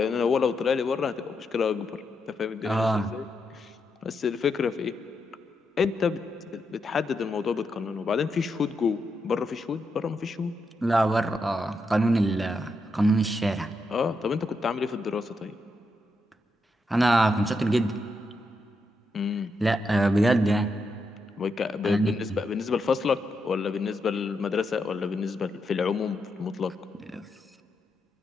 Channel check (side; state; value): both; normal; correlation 0.83